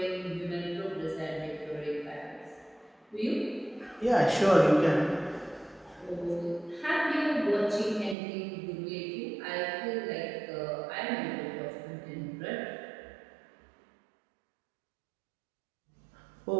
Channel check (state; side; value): drops out; left; at 8.2 s